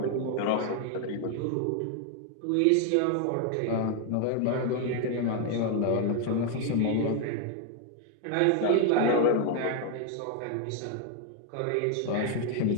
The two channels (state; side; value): different; both; correlation 0.01